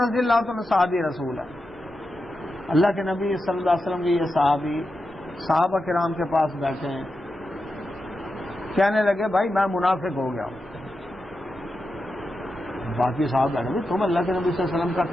اللہ عنہ صحابی رسول ہے، اللہ کے نبی صلی اللہ علیہ وسلم کے یہ صحابی صحابہ کرام کے پاس بیٹھے ہیں، کہنے لگے بھائی میں منافق ہو گیا ہوں۔ باقی صاحب بیٹھے تم اللہ کے نبی صلی اللہ علیہ وسلم کا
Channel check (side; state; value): both; normal; correlation 0.89